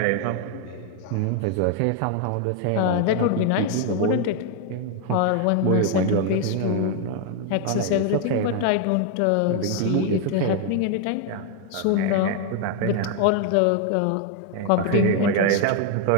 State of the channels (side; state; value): both; different; correlation 0.00